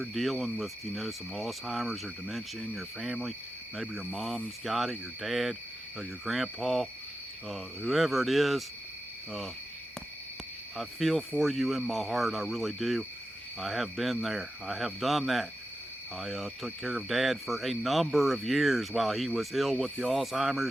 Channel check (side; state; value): both; normal; correlation 0.91